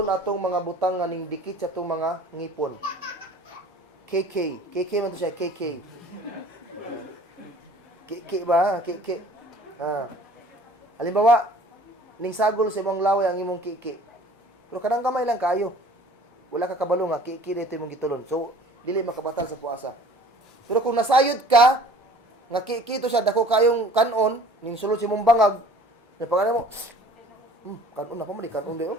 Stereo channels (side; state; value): both; normal; correlation 0.49